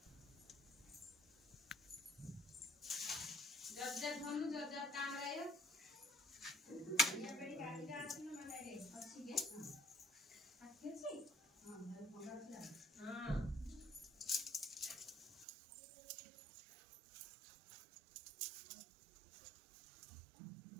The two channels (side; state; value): left; drops out; at 15.5 s